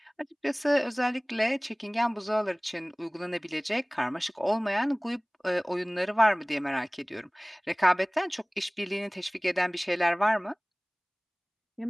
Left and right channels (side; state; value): both; identical; correlation 1.00